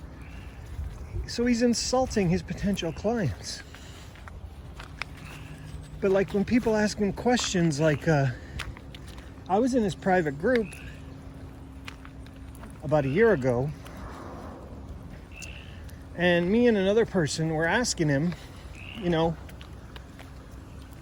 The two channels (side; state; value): both; identical; correlation 1.00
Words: So he's insulting his potential clients. But like when people ask him questions like, I was in his private group about a year ago, and me and another person were asking him, you know,